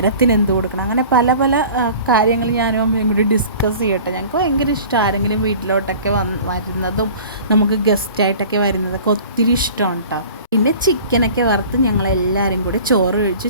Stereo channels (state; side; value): inverted; both; correlation -0.44